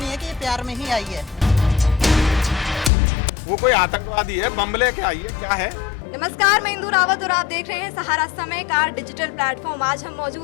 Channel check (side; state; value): right; drops out; at 2.9 s